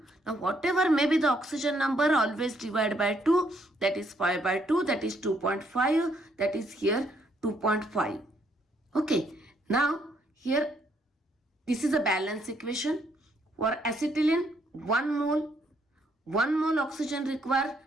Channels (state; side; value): normal; both; correlation 0.71